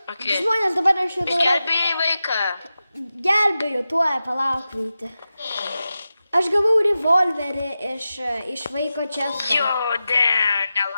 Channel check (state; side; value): inverted; both; correlation -0.92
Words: žmonės dabar aš jau darau... Gelbėjai vaiką. Gelbėju, tuoj palauk, Vyti. Aš gavau revolverį iš vaiko često. Jo,